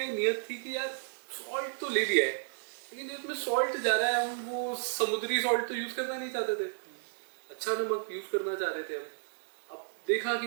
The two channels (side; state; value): left; silent; digital silence